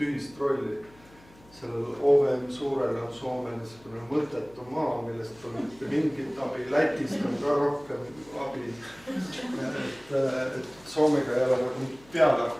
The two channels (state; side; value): noise; left; hum, 25 dB below the sound